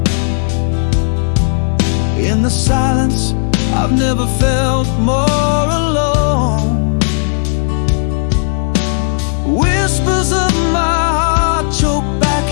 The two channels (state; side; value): silent; right; 68 dB below the other